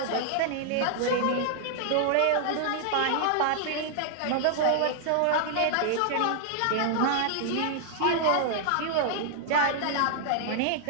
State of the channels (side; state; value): both; different; correlation -0.01